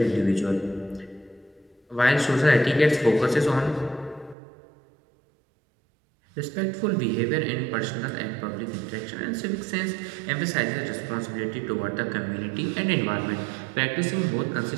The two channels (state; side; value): drops out; left; at 4.4 s